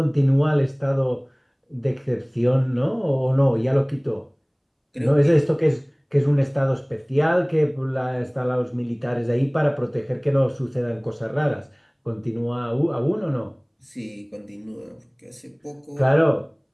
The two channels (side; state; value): both; identical; correlation 1.00